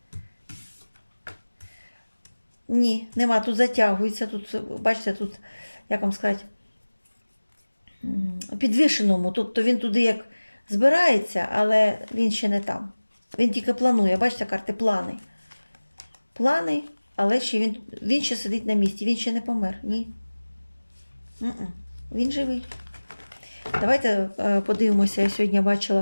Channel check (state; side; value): inverted; both; correlation -1.00